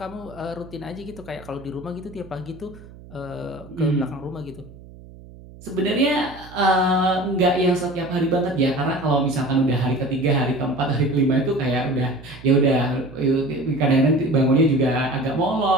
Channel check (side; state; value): right; noise; hum, 19 dB below the sound